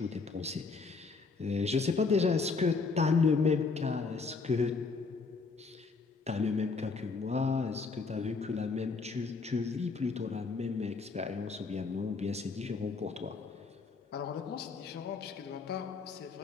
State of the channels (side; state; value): right; quieter; 4.5 dB